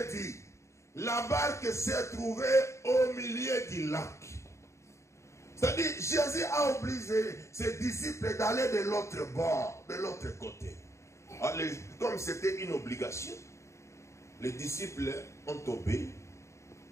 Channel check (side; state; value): right; late; 0.14 ms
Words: dit, la barque s'est trouvée au milieu du lac. C'est-à-dire, Jésus a obligé ses disciples d'aller de l'autre bord, de l'autre côté. Alors, comme c'était une obligation, les disciples ont obéi.